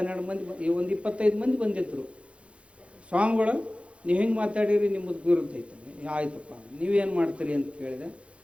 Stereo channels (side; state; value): left; late; 0.060 ms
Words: ಮಂದಿ, ಒಂದು 25 ಮಂದಿ ಬಂದಿದ್ರು. ಸ್ವಾಮಿಗಳು ನೀವು ಹಿಂಗೆ ಮಾತಾಡಿರಿ, ನಿಮ್ಮದು ಗುರುತೈತೆ. ಆಯ್ತಪ್ಪ, ನೀವೇನು ಮಾಡ್ತೀರಿ ಅಂತ ಕೇಳಿದೆ.